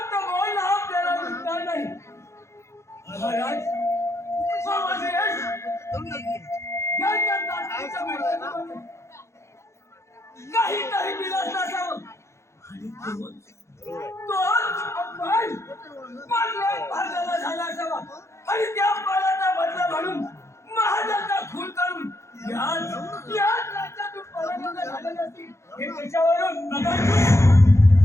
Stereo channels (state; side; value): late; right; 0.14 ms